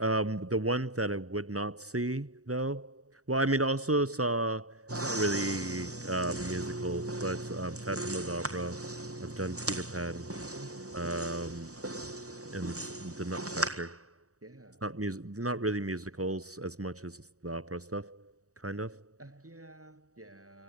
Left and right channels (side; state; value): left; late; 0.66 ms